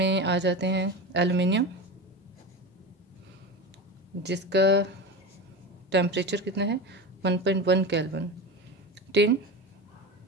आ जाते हैं एल्युमिनियम, जिसका टेम्परेचर कितना है? 1.1 केल्विन। टिन,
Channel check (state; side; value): normal; both; correlation 0.25